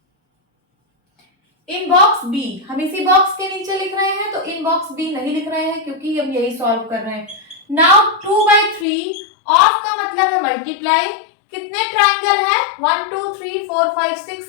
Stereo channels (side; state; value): right; drops out; at 8.8 s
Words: in box B. हम इसी बॉक्स के नीचे लिख रहे हैं, तो इन बॉक्स बी नहीं लिख रहे हैं क्योंकि हम यही सॉल्व कर रहे हैं। नाउ 2/3 ऑफ का मतलब है मल्टीप्लाई। कितने ट्राइंगल है? 1 2 3 4 5 6